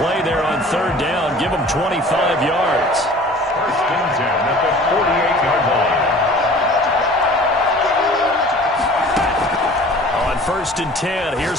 there on third down. Give them 25 yards. First and 10 at the 48-yard line. On first and 10,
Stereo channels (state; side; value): normal; both; correlation 0.46